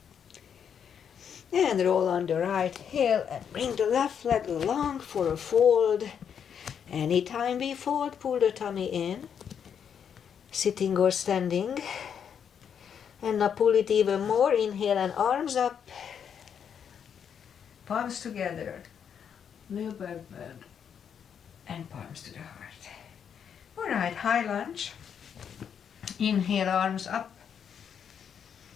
And roll on the right heel and bring the left leg along for a fold. Anytime we fold, pull the tummy in. Sitting or standing. And now pull it even more. Inhale and arms up. Palms together. Little back bend. And palms to the heart. Alright, high lunge. Inhale, arms up.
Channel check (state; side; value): quieter; right; 7.8 dB